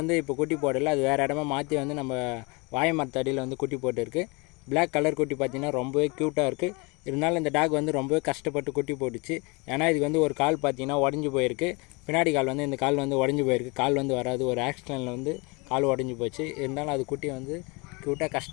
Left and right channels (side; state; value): right; quieter; 28.4 dB